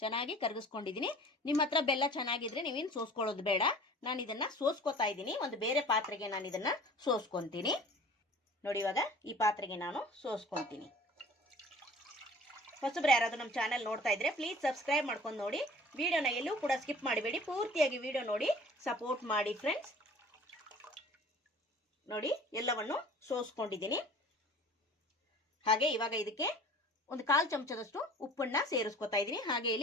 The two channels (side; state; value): both; normal; correlation 0.46